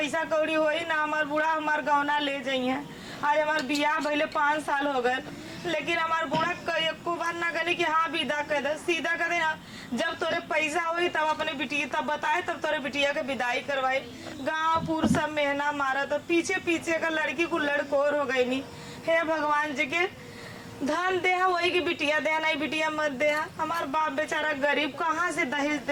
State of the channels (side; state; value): both; identical; correlation 1.00